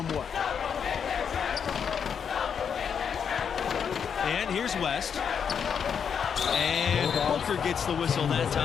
And here's West. And Booker gets the whistle that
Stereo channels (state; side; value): quieter; right; 7.2 dB